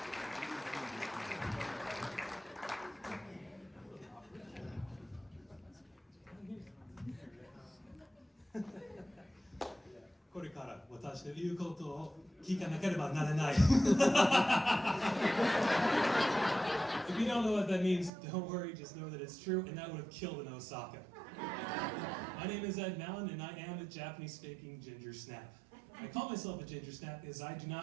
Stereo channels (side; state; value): left; drops out; at 18.1 s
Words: これから私の言うことを聞かなければならない。If you don't know what that means, don't worry, just know that it's true, and that would have killed in Osaka. My name is Ed Malin, and I am a Japanese-speaking ginger snap. I call myself a ginger snap because I do